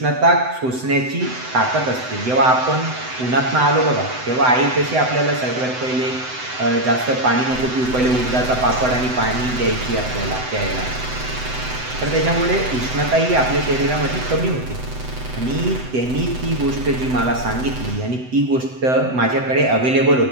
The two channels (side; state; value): left; late; 7.9 ms